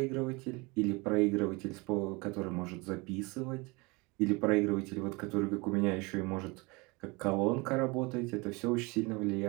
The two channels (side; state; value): left; quieter; 26.3 dB